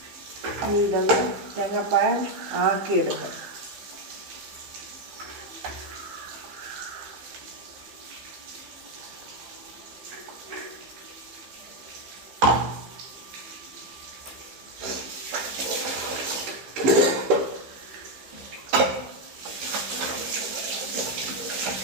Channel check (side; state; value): left; late; 15 ms